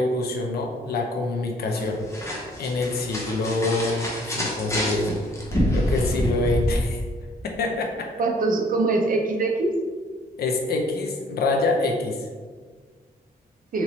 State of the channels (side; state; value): both; normal; correlation 0.57